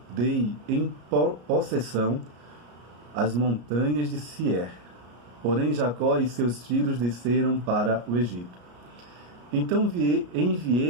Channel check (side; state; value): left; late; 34 ms